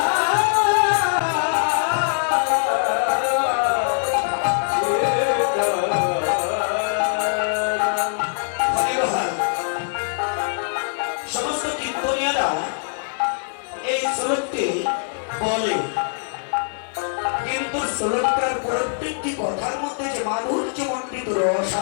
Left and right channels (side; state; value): right; silent; digital silence